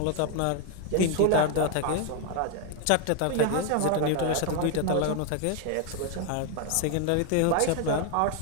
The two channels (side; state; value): both; different; correlation 0.00